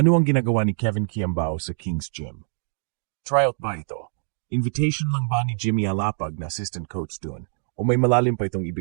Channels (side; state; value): left; silent; 62 dB below the other